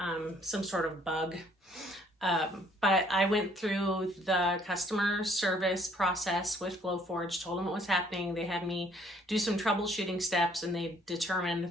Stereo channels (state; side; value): normal; both; correlation 0.62